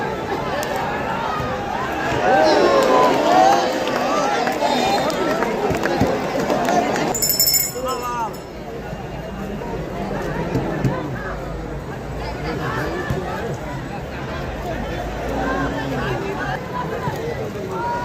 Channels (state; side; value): identical; both; correlation 1.00